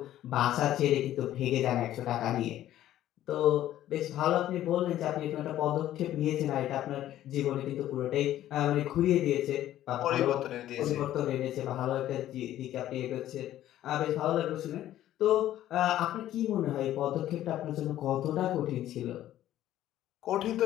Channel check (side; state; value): right; quieter; 12.9 dB